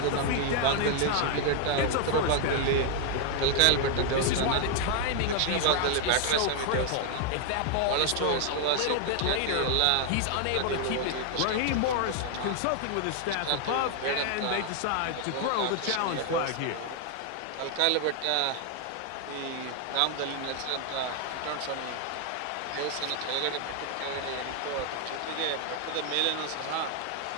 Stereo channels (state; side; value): different; both; correlation 0.00